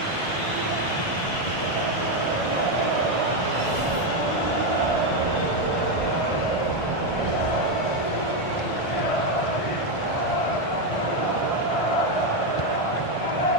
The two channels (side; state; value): right; late; 1.5 ms